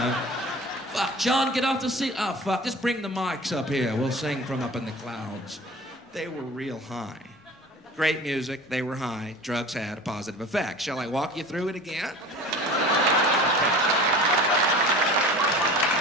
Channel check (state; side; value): normal; both; correlation 0.40